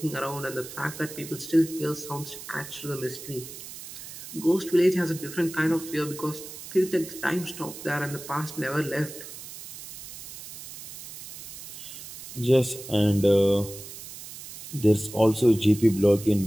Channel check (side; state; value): right; noise; hiss, 13 dB below the sound